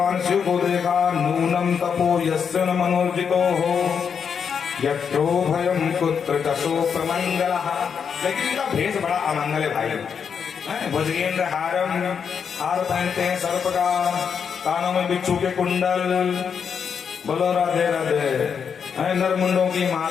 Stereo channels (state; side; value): quieter; right; 6.8 dB